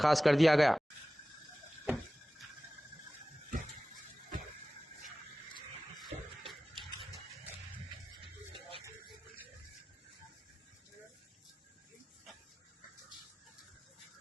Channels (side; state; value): both; normal; correlation 0.96